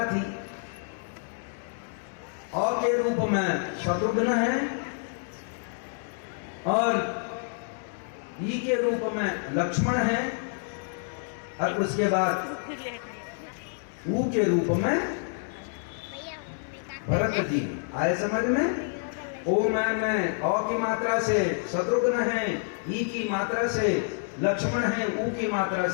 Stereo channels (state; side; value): silent; right; 57 dB below the other